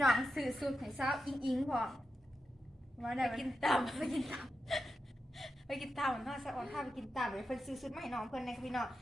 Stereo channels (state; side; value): normal; both; correlation 0.89